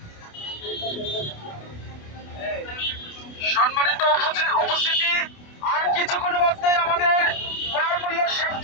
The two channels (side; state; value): right; late; 28 ms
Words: সম্মানিত উপস্থিতি, আর কিছুক্ষণ মধ্যে আমাদের ক্রয় মূল্যের